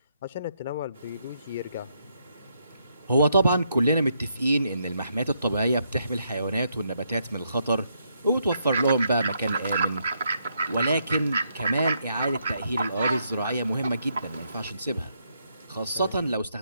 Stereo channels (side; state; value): both; inverted; correlation -0.76